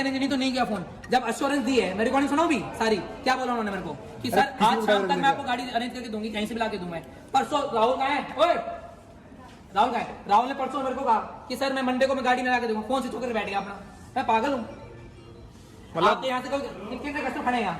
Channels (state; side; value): identical; both; correlation 1.00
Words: नहीं तो नहीं किया फोन। जब एश्योरेंस दी है, मैं रिकॉर्डिंग सुनाऊं भी सारी, क्या बोला उन्होंने मेरे को कि सर आज शाम तक मैं आपको गाड़ी अरेंज करके दूंगी, कहीं से भी ला के दूं मैं। परसों राहुल कहाँ है? ओए राहुल का है? राहुल ने परसों मेरे को कहा कि सर मैं मंडे को मैं गाड़ी में ला के दूंगा, फोन स्विच होकर बैठ गया अपना। मैं पागल हूँ? मतलब आप यहाँ से कितने कस्टमर खड़े हैं